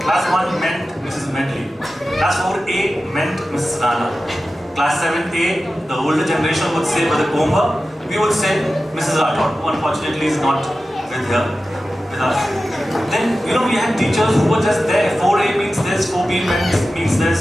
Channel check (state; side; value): normal; both; correlation 0.94